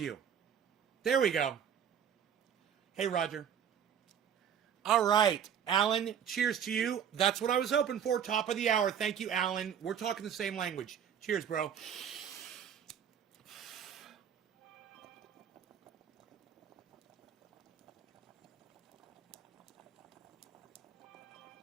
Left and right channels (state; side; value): quieter; left; 8.5 dB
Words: There we go. Hey, Roger. All right, Alan, cheers to you. That's what I was hoping for. Top of the hour. Thank you, Alan. We're talking the same language. Cheers, bro.